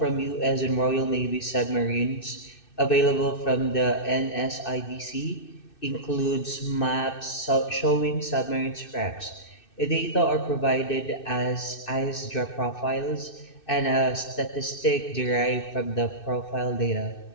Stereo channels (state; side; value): late; right; 2.6 ms